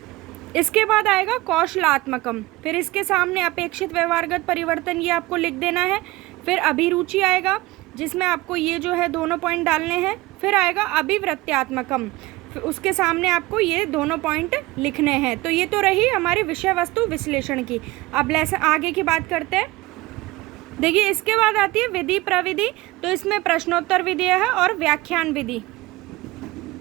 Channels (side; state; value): left; quieter; 20.1 dB